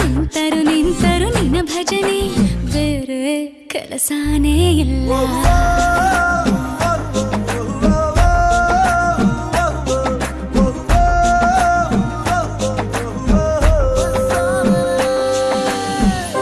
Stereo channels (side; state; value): both; identical; correlation 1.00